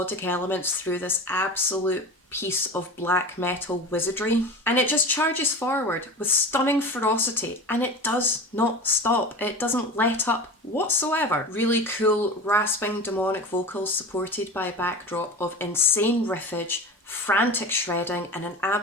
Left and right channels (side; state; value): both; normal; correlation 0.31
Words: elements through this absolute piece of black metal wizardry, and it just charges forward with stunning ferocity, and it does not stop. It doesn't let up whatsoever. Really cool, rasping, demonic vocals supported by a backdrop of insane riffage, frantic shredding, and an